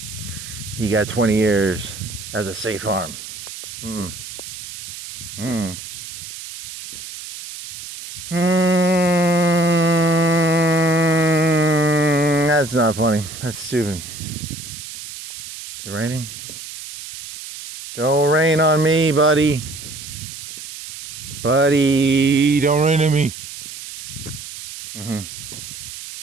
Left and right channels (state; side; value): noise; right; hiss, 12 dB below the sound